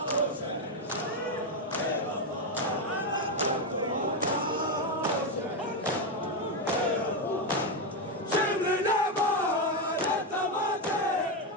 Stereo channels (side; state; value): both; normal; correlation 0.07